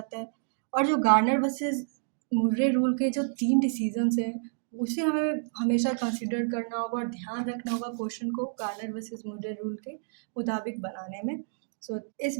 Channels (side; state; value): left; silent; digital silence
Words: है। और जो गार्नर वर्सेस मुर्रे रूल के जो 3 डिसीजंस हैं उसे हमें हमेशा कंसिडर करना होगा और ध्यान रखना होगा क्वेश्चन को गार्नर वर्सेस मुर्रे रूल के मुताबिक बनाने में। सो इस